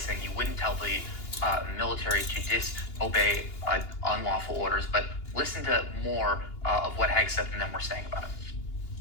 you wouldn't tell the military to disobey unlawful orders. But listen to more of what Hegseth and them were saying about it.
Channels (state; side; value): late; right; 2.8 ms